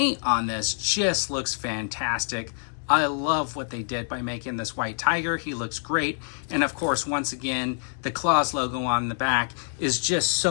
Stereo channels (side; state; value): right; silent; 60 dB below the other